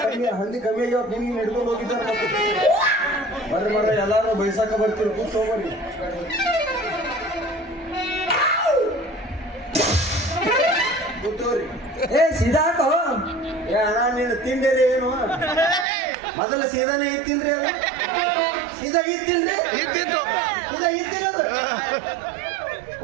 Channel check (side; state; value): left; drops out; at 15.9 s